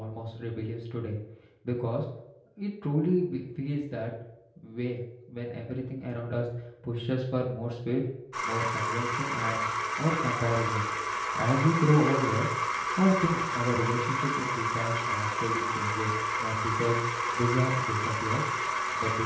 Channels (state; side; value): identical; both; correlation 1.00